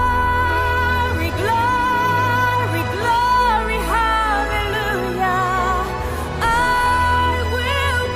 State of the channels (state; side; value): identical; both; correlation 1.00